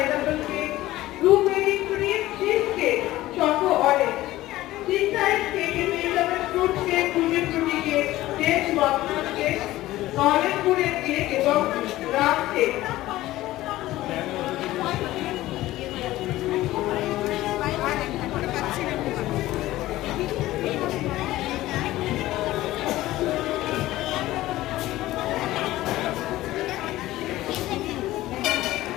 cake, blueberry cream cheese cake, choco orange, cheese কেকের পেয়ে যাবেন fruit cake, fruity cake, cake মটর কেক, নলেন গুড়ের কেক এবং রাম কেক।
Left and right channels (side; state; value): right; quieter; 16.3 dB